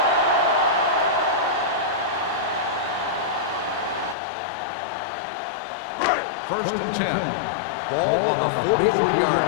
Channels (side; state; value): right; drops out; at 4.2 s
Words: First and 10. Ball on the 43-yard